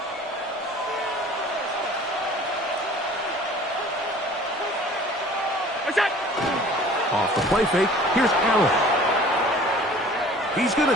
Off the play fake, here's Allen. He's going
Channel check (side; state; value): both; normal; correlation 0.47